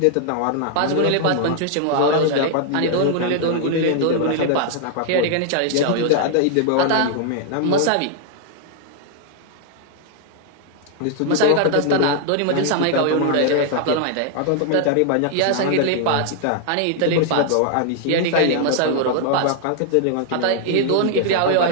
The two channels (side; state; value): both; different; correlation 0.00